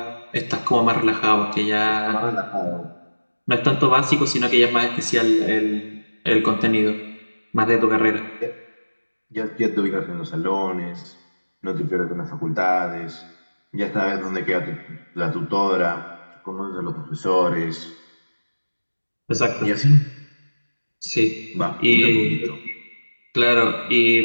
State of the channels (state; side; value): inverted; both; correlation -1.00